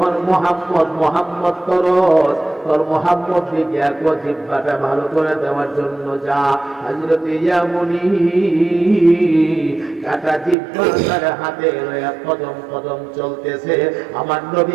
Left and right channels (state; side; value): drops out; left; at 10.6 s